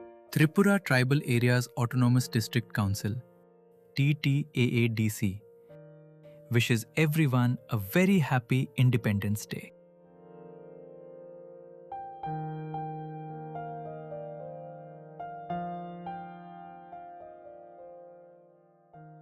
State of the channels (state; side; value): identical; both; correlation 1.00